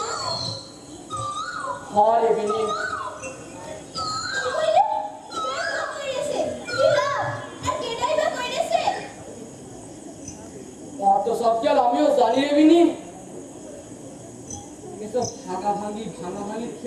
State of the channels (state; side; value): identical; both; correlation 1.00